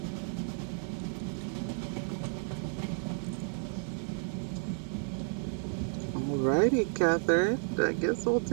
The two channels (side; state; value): left; silent; 56 dB below the other